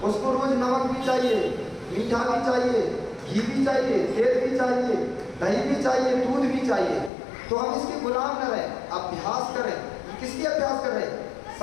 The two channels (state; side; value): drops out; right; at 7.1 s